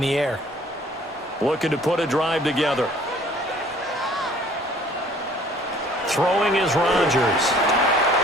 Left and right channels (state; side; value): normal; both; correlation 0.55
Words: the air. Looking to put a drive together. Throwing is Rodgers.